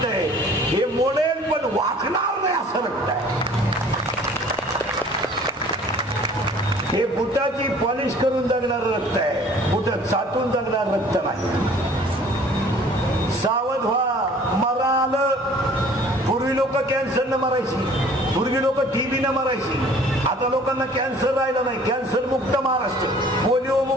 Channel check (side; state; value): both; normal; correlation 0.52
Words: आहे. हे मोडेल पण वाकणार नाही असं रक्त आहे. हे बुटाची पॉलिश करून जगणार रक्त आहे. बुट चाटून जगणार रक्त नाही. सावध व्हा. मरा आलं. पूर्वी लोक कॅन्सरनं मरायची, पूर्वी लोक टीबीनं मरायची. आता लोकांना कॅन्सर राहिलं नाही. कॅन्सर मुक्त महाराष्ट्र, पोलिओ